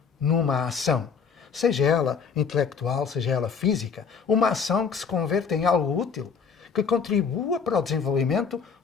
numa ação, seja ela intelectual, seja ela física, uma ação que se converta em algo útil, que contribua para o desenvolvimento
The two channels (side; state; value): right; quieter; 6.0 dB